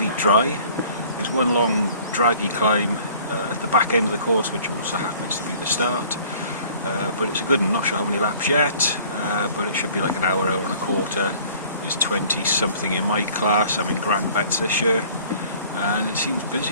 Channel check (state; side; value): inverted; both; correlation -0.52